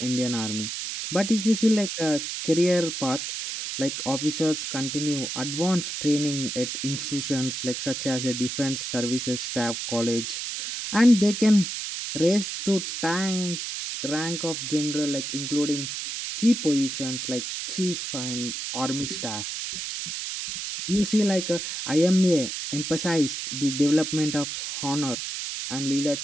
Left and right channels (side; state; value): right; noise; hiss, 5 dB below the sound